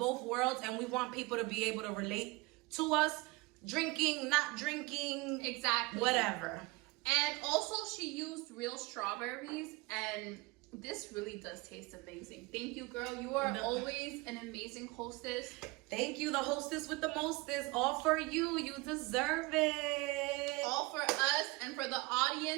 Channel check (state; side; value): quieter; left; 23.9 dB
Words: worlds, and we want people to be able to relate to us. Drinking, not drinking. Exactly. Whatever. And also she used real strawberries, and this really does taste amazing. Thank you, girl. You are always an amazing hostess. Thank you, the hostess with the mostest. All for you. You deserve it. All for us and for the